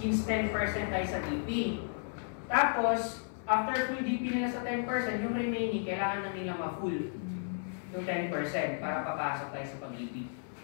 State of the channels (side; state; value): right; silent; 55 dB below the other